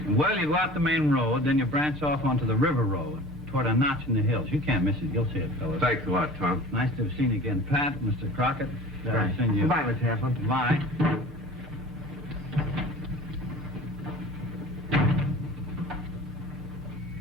Well, you go out the main road, then you branch off onto the river road. toward a notch in the hills. You can't miss it. You'll see it, fellas. Thanks a lot, Tom. Nice to have seen you again, Pat, Mr. Crockett. Right. I've seen you. Goodbye, Miss Hanson. Bye.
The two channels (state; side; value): normal; both; correlation 0.41